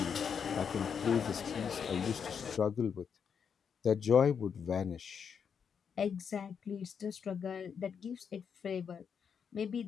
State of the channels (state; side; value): quieter; right; 6.9 dB